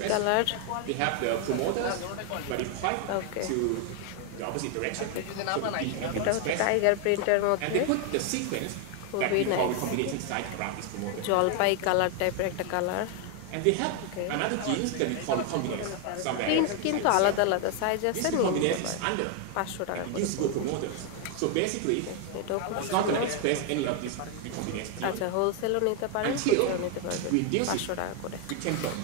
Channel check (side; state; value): both; different; correlation 0.00